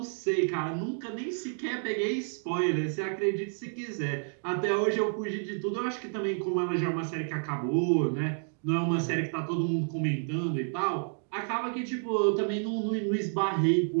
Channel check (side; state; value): left; silent; 58 dB below the other